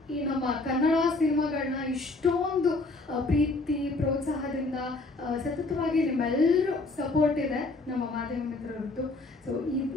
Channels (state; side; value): quieter; right; 3.2 dB